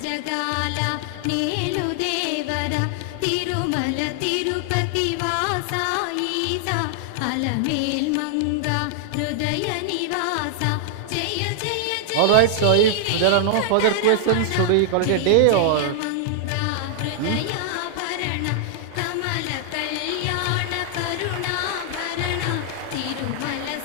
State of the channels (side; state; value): both; different; correlation 0.00